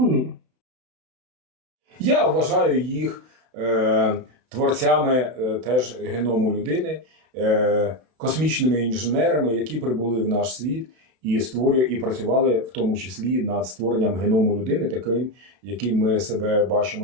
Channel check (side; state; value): left; late; 32 ms